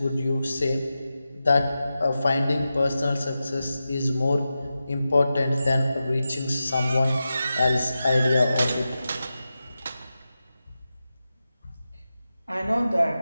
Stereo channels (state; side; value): inverted; both; correlation -0.92